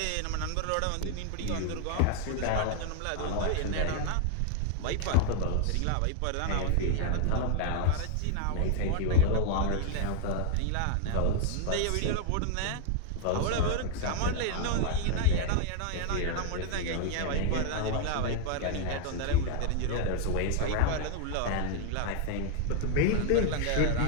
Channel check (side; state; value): both; different; correlation 0.00